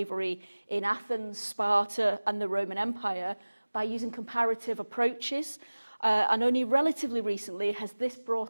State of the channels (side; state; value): both; inverted; correlation -1.00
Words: in Athens, Sparta, and the Roman Empire by using comparative approaches. And only relatively recently has this